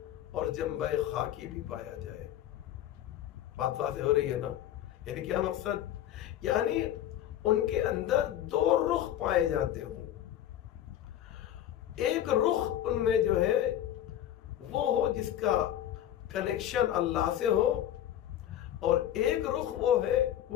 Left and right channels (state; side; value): quieter; right; 11.7 dB